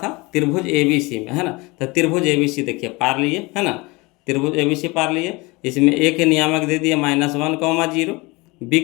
त्रिभुज ABC में, है ना। तो त्रिभुज ABC देखिए पार लिए, है ना, त्रिभुज ABC पार लिए। इसमें ए के नियामक दे दिए -1, 0, बी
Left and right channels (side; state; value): right; quieter; 24.5 dB